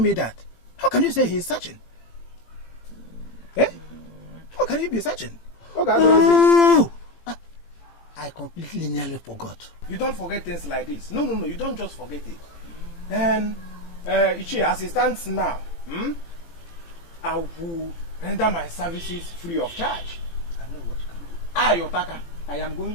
me that. How can you say he is searching? Eh? How can he be searching? Oh, I completely nearly forgot. You don't forget things like this. No, you don't just forget it. Then, Ichi, as it stands now, I will render my services free of charge. I know what you can do. Otaka, I am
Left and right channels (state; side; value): late; right; 18 ms